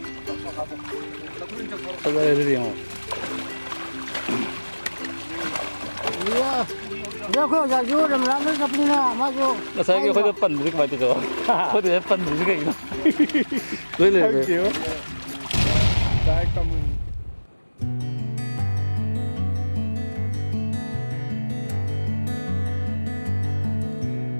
ꯐꯖꯔꯦ ꯑꯗꯨꯗꯤ ꯌꯦꯡꯉꯣ ꯑꯩꯈꯣꯏ ꯑꯣꯖꯥꯁꯨ ꯔꯝꯔꯥꯝꯗ ꯆꯠꯄꯅꯤꯅ ꯃꯥꯁꯨ ꯉꯁꯥꯏꯒꯤ ꯑꯩꯈꯣꯏꯗ ꯄꯟꯕꯗꯤ ꯀꯃꯥꯏꯅ ꯇꯧꯗꯣ ꯑꯩꯈꯣꯏꯗ ꯄꯟꯕꯗꯤ ꯀꯩꯒꯤꯅꯣ ꯂꯣꯏ ꯂꯩꯔꯦ ꯗꯥꯏꯔꯦꯛ ꯀꯃꯟ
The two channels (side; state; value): both; inverted; correlation -1.00